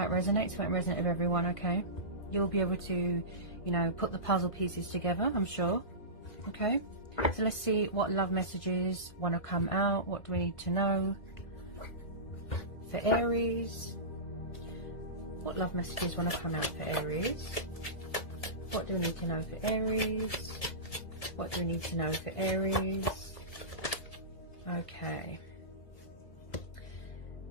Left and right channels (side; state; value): right; late; 2.0 ms